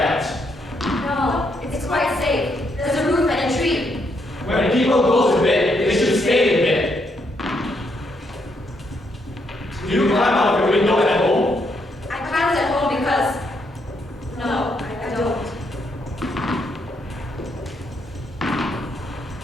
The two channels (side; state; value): both; normal; correlation 0.76